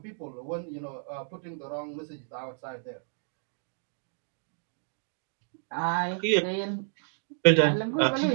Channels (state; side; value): silent; left; digital silence